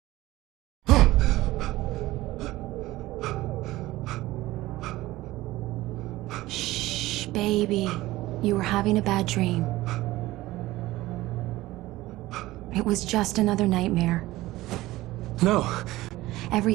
Shh, baby. You were having a bad dream. It was just another nightmare. No.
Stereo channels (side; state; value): left; quieter; 17.6 dB